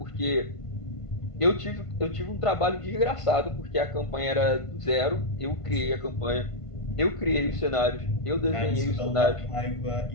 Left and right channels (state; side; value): late; right; 1.5 ms